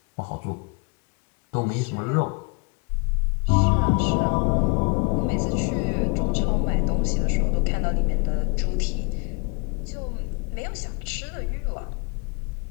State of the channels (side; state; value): right; quieter; 32.1 dB